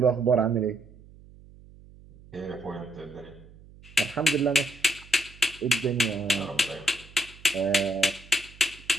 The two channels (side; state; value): right; noise; hum, 22 dB below the sound